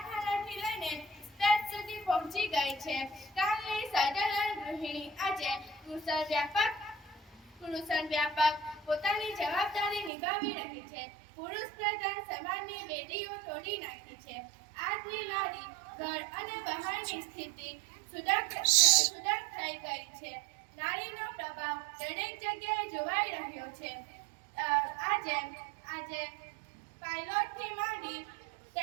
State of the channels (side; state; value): left; drops out; at 10.1 s